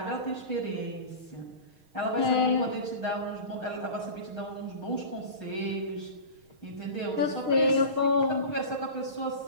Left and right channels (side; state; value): left; late; 6.4 ms